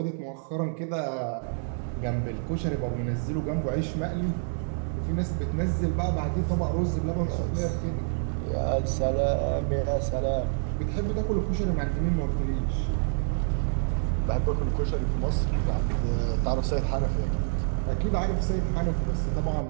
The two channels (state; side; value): silent; left; 60 dB below the other